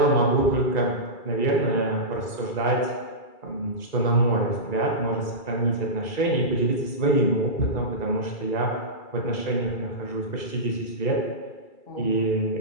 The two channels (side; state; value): right; late; 2.3 ms